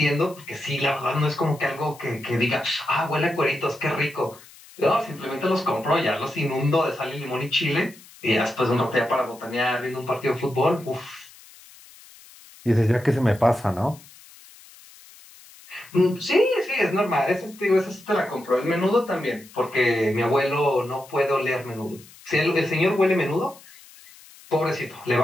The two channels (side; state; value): left; noise; hiss, 22 dB below the sound